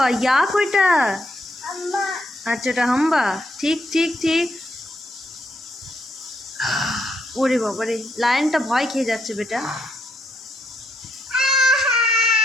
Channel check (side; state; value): both; normal; correlation 0.77